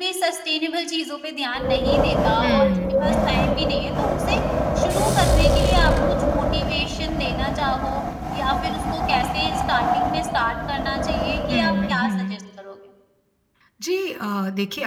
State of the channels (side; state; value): both; identical; correlation 1.00